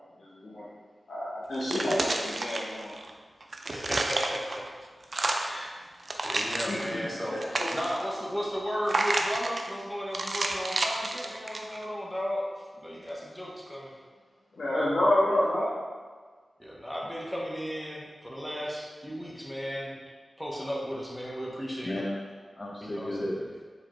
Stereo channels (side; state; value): both; normal; correlation 0.94